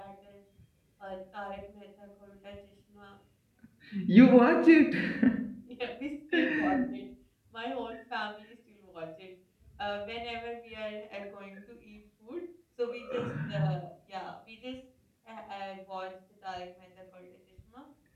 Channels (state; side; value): identical; both; correlation 1.00